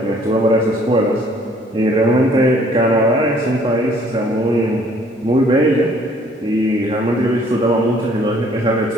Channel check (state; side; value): normal; both; correlation 0.59